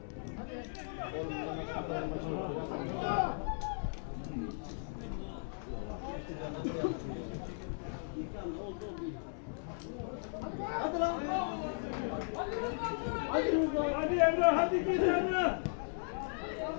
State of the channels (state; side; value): silent; right; 53 dB below the other